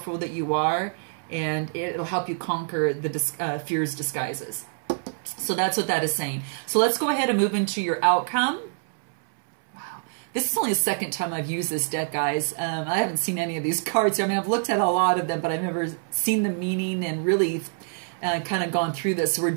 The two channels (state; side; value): silent; left; 61 dB below the other